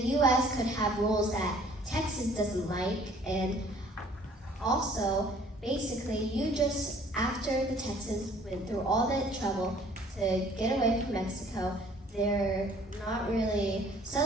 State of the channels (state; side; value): normal; both; correlation 0.56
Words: could have rules that Texas doesn't like, and also, basically, after the Texans went through all that trouble to get away from Mexico, they're not really